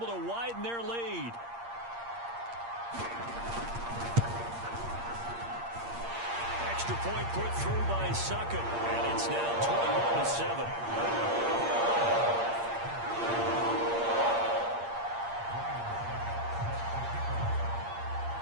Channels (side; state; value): left; late; 8.6 ms